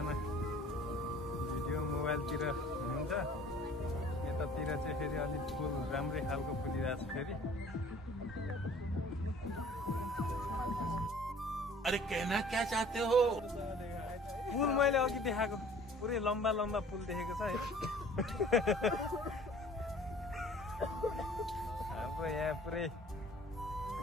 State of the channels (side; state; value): both; normal; correlation 0.51